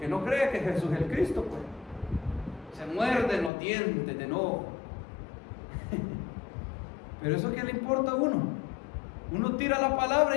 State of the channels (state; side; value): drops out; right; at 3.5 s